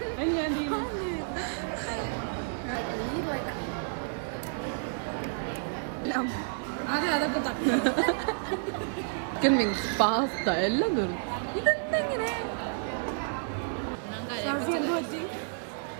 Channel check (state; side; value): silent; left; digital silence